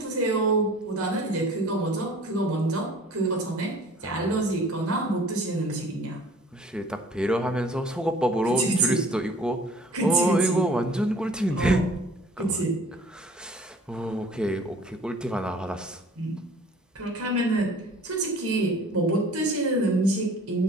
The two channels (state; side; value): normal; both; correlation 0.49